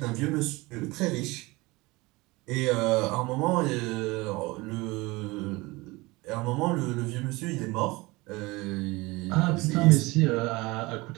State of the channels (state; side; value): quieter; left; 22.7 dB